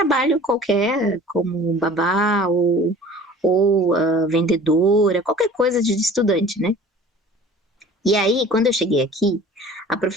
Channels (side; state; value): both; normal; correlation 0.45